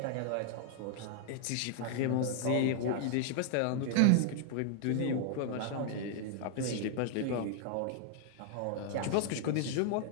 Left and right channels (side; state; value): both; different; correlation 0.00